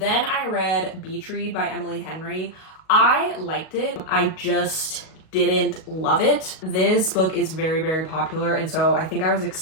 I read Beach Read by Emily Henry. I liked it. I just didn't love it. This book is very, very popular, and so I think I was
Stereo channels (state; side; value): late; right; 38 ms